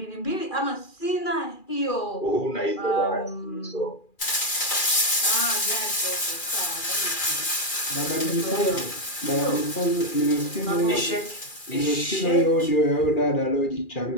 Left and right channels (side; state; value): right; late; 2.4 ms